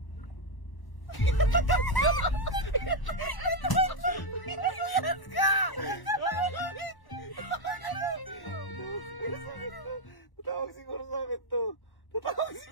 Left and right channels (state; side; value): late; right; 1.0 ms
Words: Tatawag siguro sa akin to. Tatawag